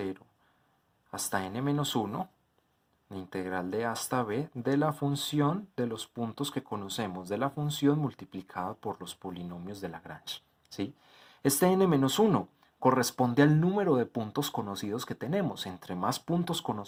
hasta n-1, la integral de a hasta b de la función de los puntos que conocemos de la función multiplicada por los polinomios de Lagrange, ¿sí? Este n-1 corresponde al número de puntos conocidos que tenemos. Entre más puntos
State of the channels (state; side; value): identical; both; correlation 1.00